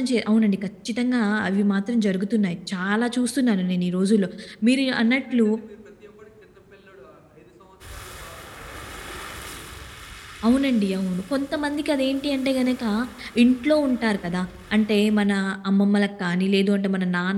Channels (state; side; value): identical; both; correlation 1.00